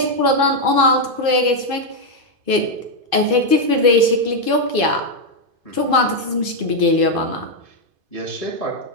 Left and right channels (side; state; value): left; late; 2.5 ms